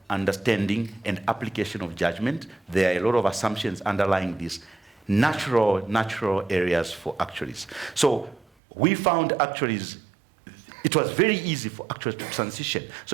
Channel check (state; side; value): drops out; left; at 8.5 s